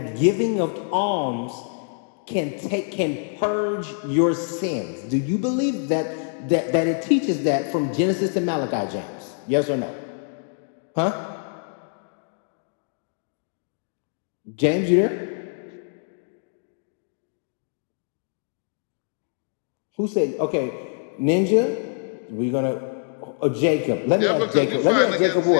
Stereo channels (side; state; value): right; silent; digital silence